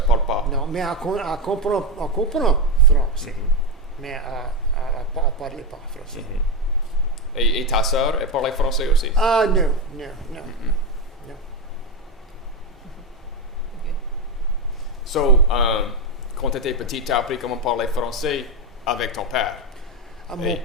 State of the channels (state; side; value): normal; both; correlation 0.11